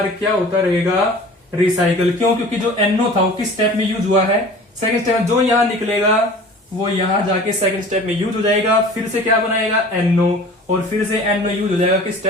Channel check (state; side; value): normal; both; correlation 0.43